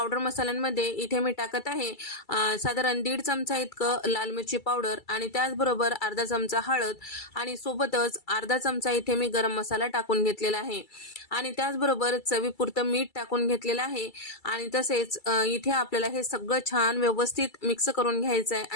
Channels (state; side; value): late; right; 2.3 ms